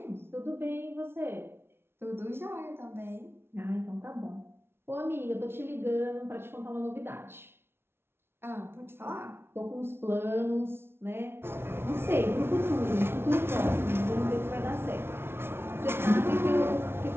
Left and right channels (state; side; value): late; left; 0.12 ms